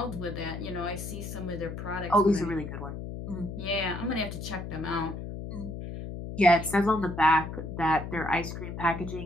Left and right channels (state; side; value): noise; left; hum, 7 dB below the sound